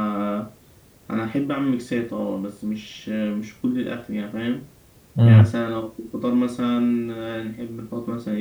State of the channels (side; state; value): both; identical; correlation 1.00